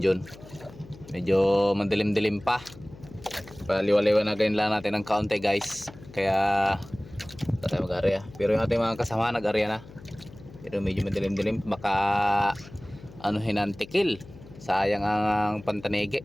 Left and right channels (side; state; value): left; noise; hum, 19 dB below the sound